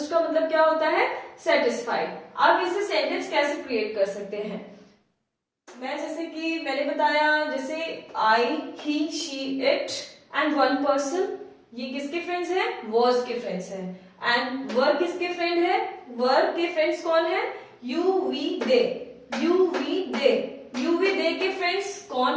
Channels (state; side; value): identical; both; correlation 1.00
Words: का मतलब क्या होता है? सेटिस्फाइड। आप इसे सेंटेंस कैसे क्रिएट कर सकते हैं? मैं जैसे कि मैंने बताया, जैसे I, he, she, it and one person, ये किसके फ्रेंड्स हैं? वॉज के फ्रेंड्स हैं। एंड वर किसके फ्रेंड है? वर के फ्रेंड्स कौन है? You, we, they. You, we, they. You, we, they के फ्रेंड्स